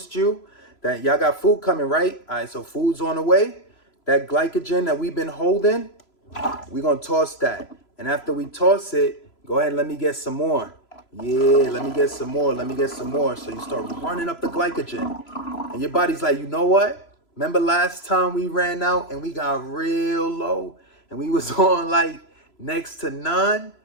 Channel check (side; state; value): right; late; 3.0 ms